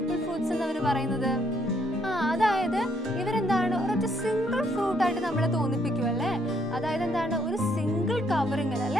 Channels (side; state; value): both; normal; correlation 0.70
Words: ഫ്രൂട്ട്സ് എന്ന് അവർ പറയുന്നത്? അതായത് ഇവരെന്താണ് ഒരൊറ്റ സിംഗിൾ ഫ്രൂട്ട് ആയിട്ട് നമ്മളെ തോന്നിപ്പിക്കും അല്ലേ? അതായത് എന്താണ് ഒരു സിംഗിൾ കവറിംഗ്